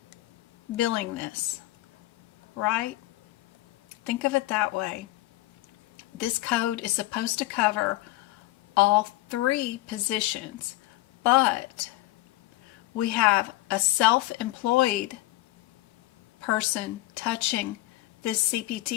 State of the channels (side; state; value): right; quieter; 18.0 dB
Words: billing this, right? Think of it that way. This code is supposed to cover all 3 positions, but we have a self-employed person touching this